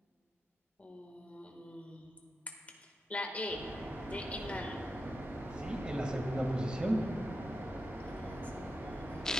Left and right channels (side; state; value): both; normal; correlation 0.88